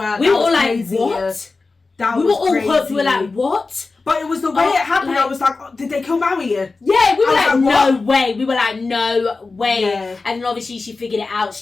We were all like, what? We were all hooked. We were like, what? But it was the way it happened. I was like, oh, did they kill Maui? Yeah, we were like, no way. We were like, no way. Yeah. And then obviously she figured it out.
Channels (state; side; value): quieter; right; 3.9 dB